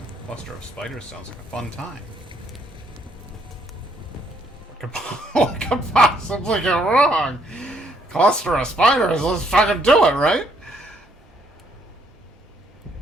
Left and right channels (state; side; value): normal; both; correlation 0.69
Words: Cluster of Spiders sounds like a fun time. What could possibly go wrong? Cluster of Spiders, let's fucking do it, right?